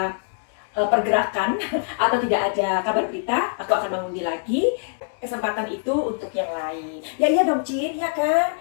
pergerakan atau tidak ada kabar berita, aku akan mengundi lagi. Kesempatan itu untuk yang lain. Ya iya dong, Cin, ya kan?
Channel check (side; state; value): right; silent; digital silence